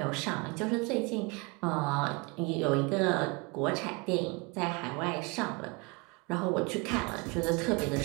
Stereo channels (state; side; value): quieter; left; 28.5 dB